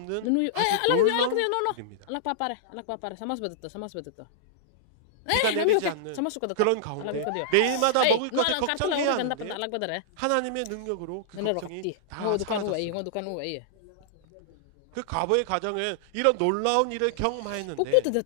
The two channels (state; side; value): different; both; correlation -0.01